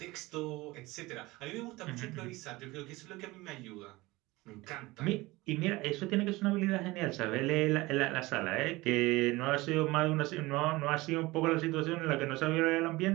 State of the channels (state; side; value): quieter; left; 20.9 dB